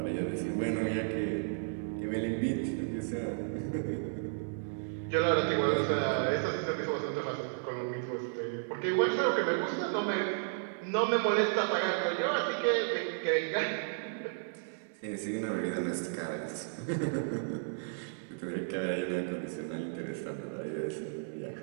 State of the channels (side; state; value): left; silent; digital silence